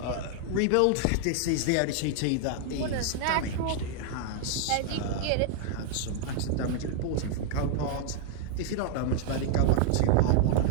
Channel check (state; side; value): different; both; correlation 0.00